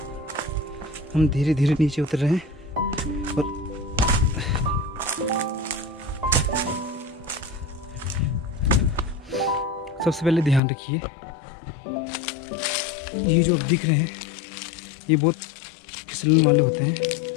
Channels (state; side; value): drops out; right; at 10.6 s